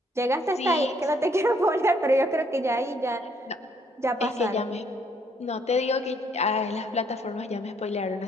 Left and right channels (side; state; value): both; normal; correlation 0.68